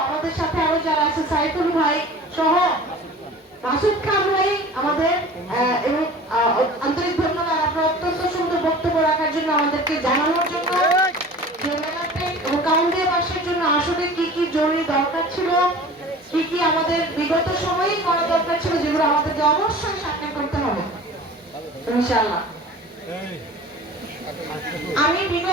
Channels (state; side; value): normal; both; correlation 0.41